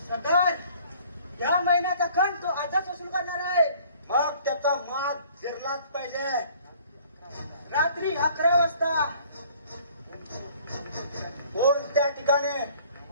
सरकार? या महिन्याचा खंड तो आजच वसूल करणार आहे. मग त्याचा मात शिरलाच पाहिजे. रात्री 11 वाजता कोणत्या ठिकाणी?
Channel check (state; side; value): inverted; both; correlation -0.55